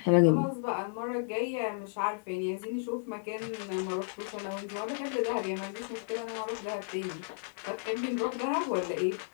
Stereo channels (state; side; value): silent; right; digital silence